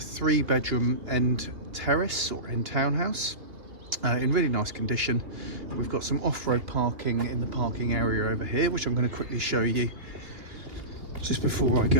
end terrace or end townhouse in really nice condition. We've got some off-road parking in the parking area over here, which I'm going to quickly show you just before I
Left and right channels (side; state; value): left; late; 2.9 ms